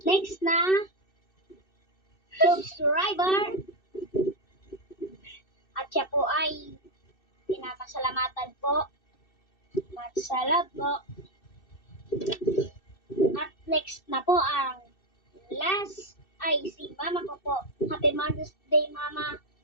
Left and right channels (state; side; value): late; right; 2.6 ms